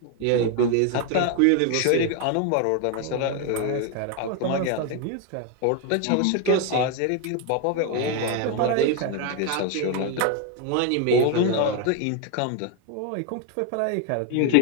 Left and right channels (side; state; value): both; different; correlation 0.01